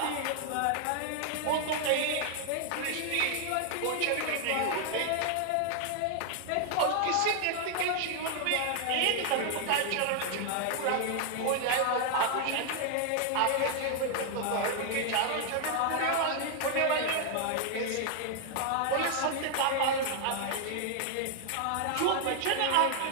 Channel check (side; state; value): both; different; correlation 0.00